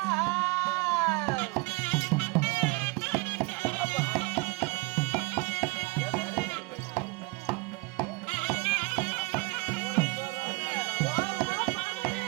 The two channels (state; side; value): quieter; left; 25.9 dB